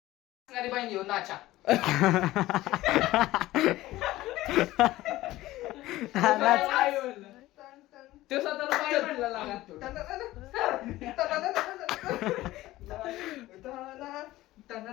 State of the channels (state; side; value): quieter; right; 16.7 dB